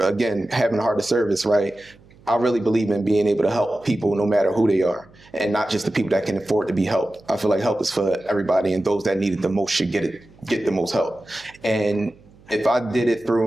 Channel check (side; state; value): right; noise; hum, 26 dB below the sound